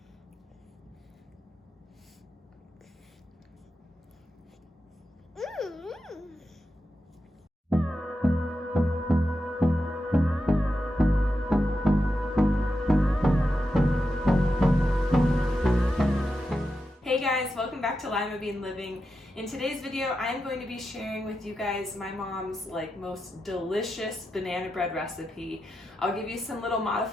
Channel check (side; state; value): both; normal; correlation 0.88